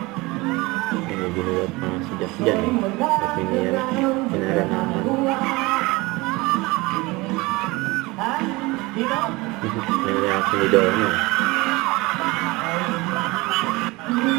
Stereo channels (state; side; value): quieter; left; 22.9 dB